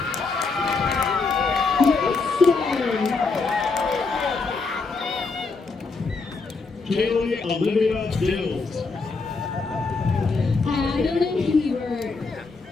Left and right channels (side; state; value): right; quieter; 4.2 dB